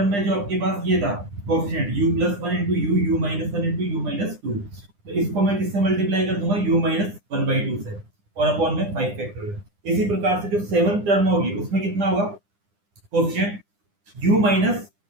में जो आपके पास ये था coefficient u plus one into u minus one into u minus to, तो इसको मैं किससे मल्टीप्लाई कर दूंगा, u minus one by to से, और अपॉन में 5 फैक्टोरियल। इसी प्रकार से जो सेवंथ टर्म होगी उसमें कितना होगा कोएफिशिएंट, u माइनस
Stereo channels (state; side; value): late; left; 9.9 ms